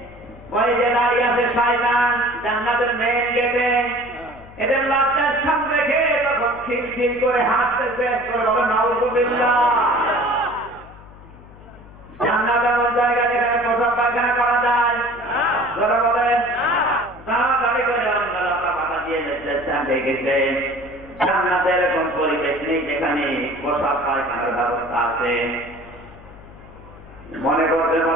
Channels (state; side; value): noise; left; hum, 20 dB below the sound